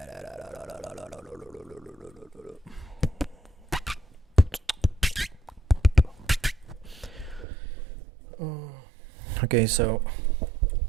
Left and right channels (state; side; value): drops out; left; at 7.5 s